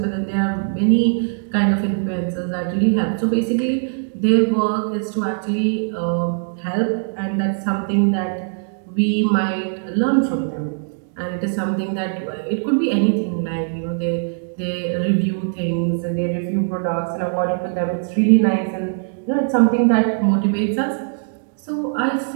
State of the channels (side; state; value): left; silent; digital silence